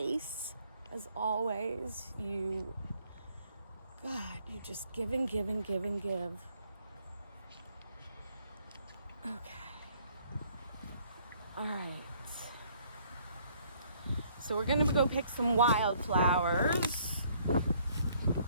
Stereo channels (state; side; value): inverted; both; correlation -0.64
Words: As always, you just give and give and give and give. Okay, all right. So we're gonna go pick some wildflowers.